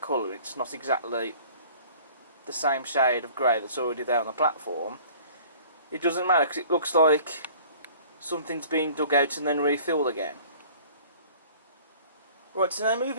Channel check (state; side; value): inverted; both; correlation -0.50